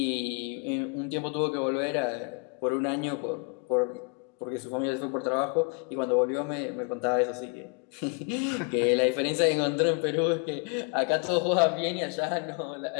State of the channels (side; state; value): right; quieter; 37.5 dB